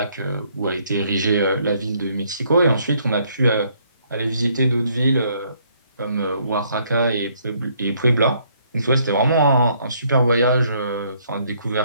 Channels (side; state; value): both; inverted; correlation -0.67